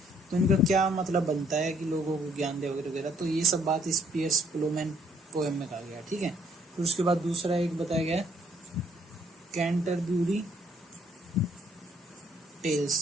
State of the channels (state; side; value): normal; both; correlation 0.66